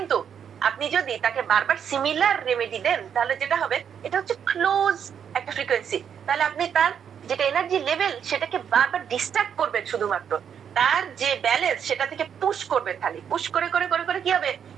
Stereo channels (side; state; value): left; quieter; 8.0 dB